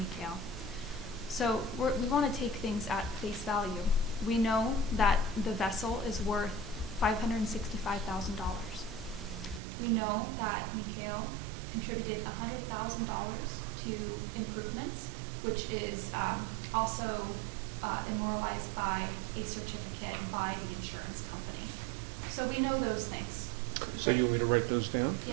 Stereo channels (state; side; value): drops out; left; at 9.6 s